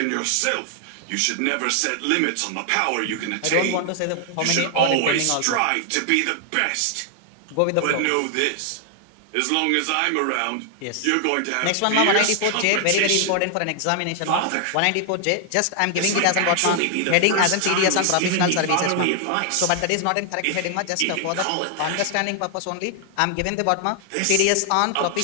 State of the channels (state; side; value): different; both; correlation 0.00